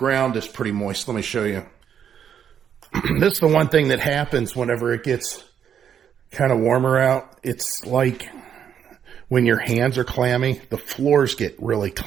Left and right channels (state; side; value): quieter; left; 8.5 dB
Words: is pretty moist. Let me show you. This is the one thing that happens whenever it gets kind of warmer out. It's like when your hands are clammy, the floors get really